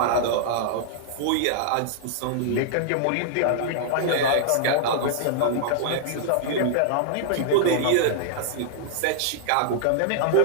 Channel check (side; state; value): both; different; correlation -0.01